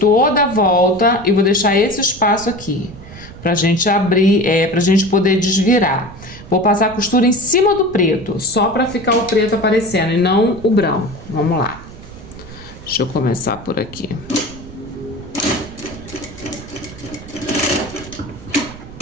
a volta e vou deixar esse espaço aqui pra gente abrir, pra gente poder desvirar. Vou passar a costura em cima do preto, só pra ficar o preto aparecendo e não o branco. Vamos lá. Deixa eu começar por aqui.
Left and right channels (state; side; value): noise; right; rumble, 16 dB below the sound